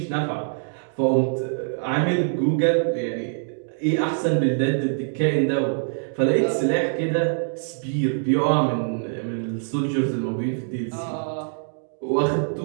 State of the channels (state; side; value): silent; left; digital silence